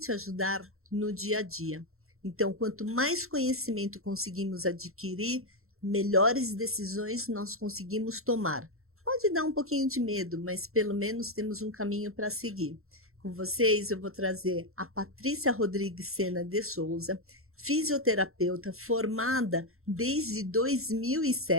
ajudar no dia a dia. Então, quanto mais conhecimento conseguimos adquirir, melhores decisões nós conseguimos tomar. Pode dar um pouquinho de medo, mas pelo menos temos um caminho para seguir. Com vocês, eu vou trazer a Patrícia Rodrigues Sena de Souza, fisioterapeuta formada desde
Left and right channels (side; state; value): left; late; 0.62 ms